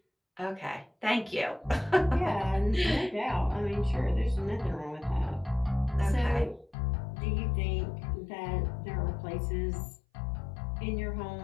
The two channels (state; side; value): drops out; right; at 6.8 s